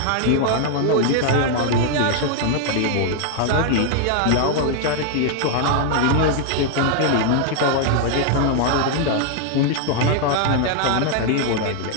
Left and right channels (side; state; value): both; different; correlation 0.00